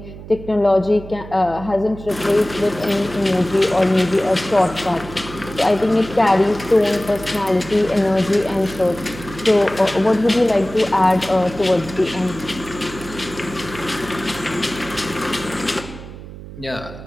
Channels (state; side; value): noise; right; hum, 14 dB below the sound